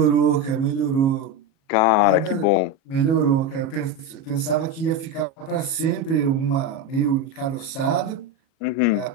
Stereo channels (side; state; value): right; late; 37 ms